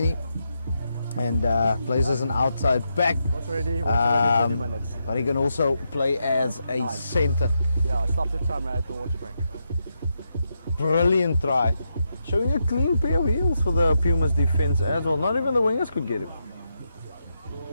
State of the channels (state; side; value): inverted; both; correlation -0.84